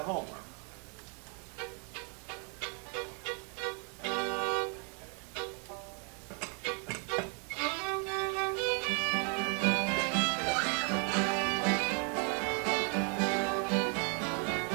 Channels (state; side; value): quieter; left; 37.7 dB